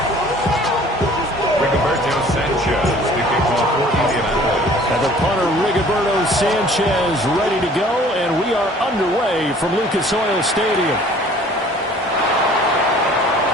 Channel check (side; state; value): both; normal; correlation 0.52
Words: Sanchez ready to go, and we are underway from Lucas Oil Stadium.